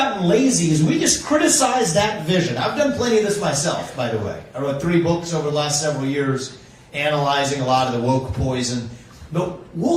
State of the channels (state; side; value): identical; both; correlation 1.00